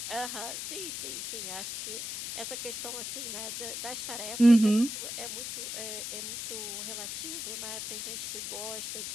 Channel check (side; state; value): left; noise; hiss, 5 dB below the sound